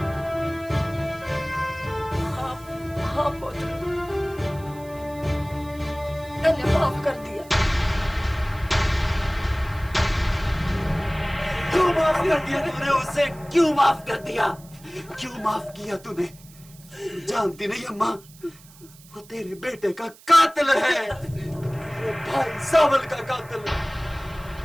हाँ पुत्र, मैंने माफ कर दिया। क्यों माफ कर दिया तूने उसे? क्यों माफ कर दिया? क्यों माफ किया तूने? जानती नहीं अम्मा, वो तेरे बेटे का कातिल है, तेरे भाई सावल का कातिल है।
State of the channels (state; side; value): noise; right; hiss, 23 dB below the sound